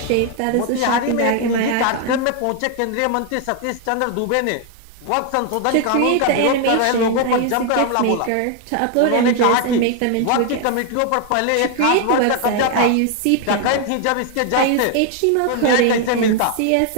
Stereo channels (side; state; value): both; different; correlation 0.00